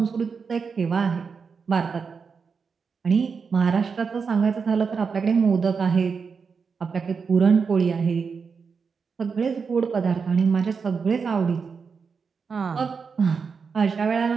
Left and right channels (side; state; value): left; quieter; 5.5 dB